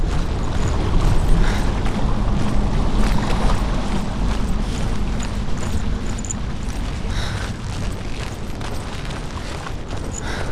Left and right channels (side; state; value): both; identical; correlation 1.00